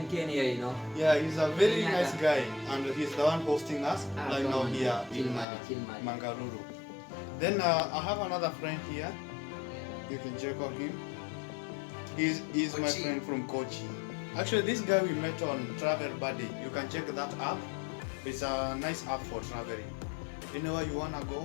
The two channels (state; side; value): drops out; right; at 5.5 s